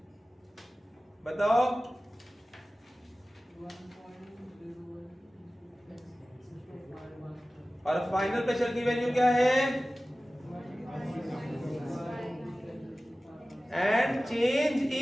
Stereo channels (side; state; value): both; normal; correlation 0.96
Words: बताओ? और फाइनल प्रेशर की वैल्यू क्या है? And change